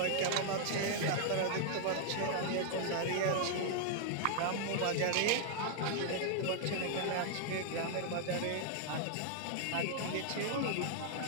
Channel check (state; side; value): different; both; correlation 0.00